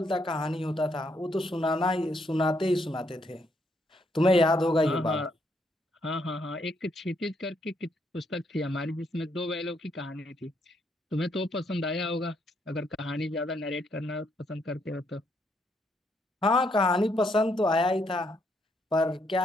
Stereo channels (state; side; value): normal; both; correlation 0.74